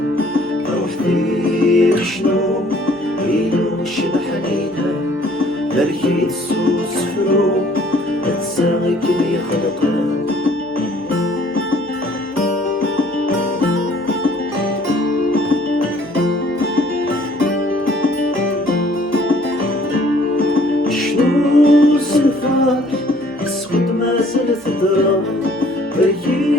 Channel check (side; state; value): right; noise; hum, 29 dB below the sound